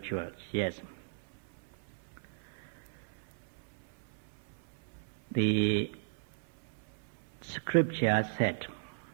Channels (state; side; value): silent; left; 54 dB below the other